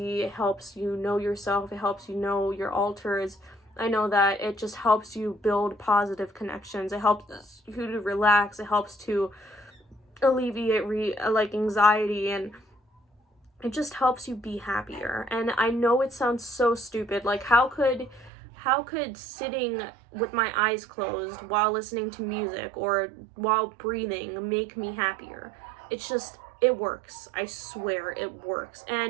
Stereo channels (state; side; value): drops out; left; at 18.3 s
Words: helps you know yourself, it helps you know your alters. I know that it just helps you build positive connections. It helps you to relax. It helps to alleviate like anxiety, and it just helps you be happier. And I know it sounds so stupid. Like, how could sitting with my eyes closed while listening to music or while breathing make me happier? It's just, it works. I swear it works.